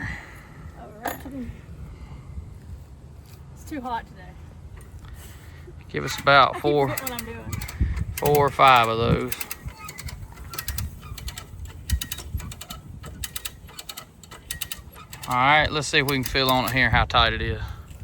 It's too hot today. Give us about 4 or 5 of those. All right, let's see if we can feel on it here how tight it is.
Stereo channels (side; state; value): both; identical; correlation 1.00